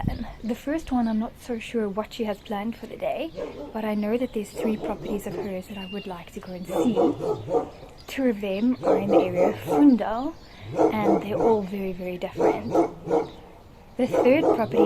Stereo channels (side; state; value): both; identical; correlation 1.00